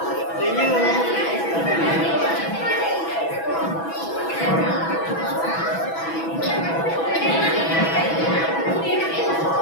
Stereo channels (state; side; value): late; right; 6.1 ms